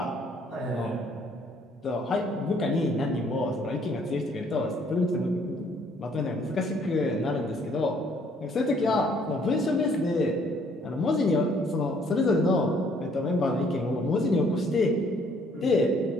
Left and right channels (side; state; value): both; normal; correlation 0.63